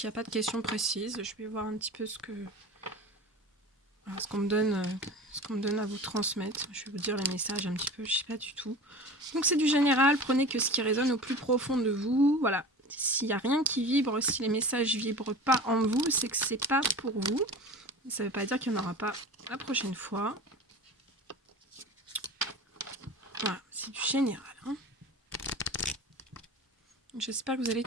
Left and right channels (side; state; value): both; normal; correlation 0.35